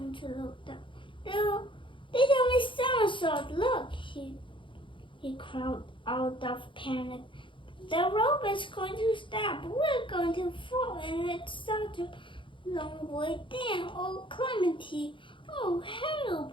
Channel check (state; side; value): late; right; 0.24 ms